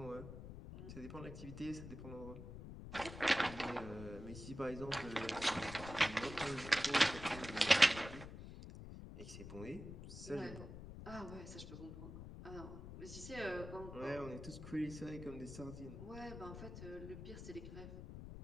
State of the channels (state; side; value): noise; left; rumble, 11 dB below the sound